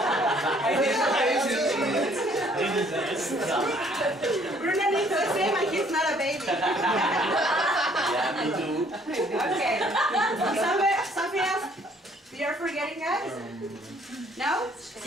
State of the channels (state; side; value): normal; both; correlation 0.61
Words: Bruno needs the same and he's not a baby. Yeah, me too. Okay, something else you're forgetting, guys? No?